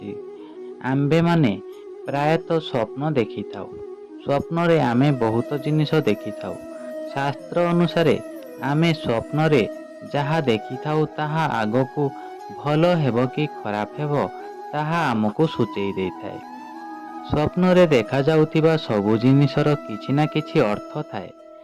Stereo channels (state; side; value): identical; both; correlation 1.00